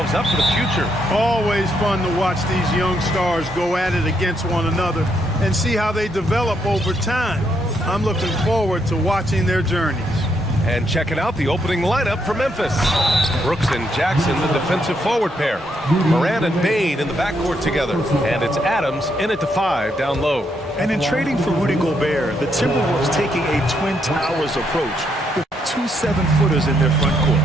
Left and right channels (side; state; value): both; normal; correlation 0.76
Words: up for the future. Always fun to watch these young stars go at it against one another and see how they develop over time. I'm looking forward to watching their journeys. And checking out the opening lineup for Memphis. Brooks and Jackson, the defensive forward pair. Morant and Bane in the backcourt together. And it's Adams in at the 5 down low. And in trading for Rudy Gobert, the Timberwolves taking a Twin Towers approach with 2 7-footers in their front court.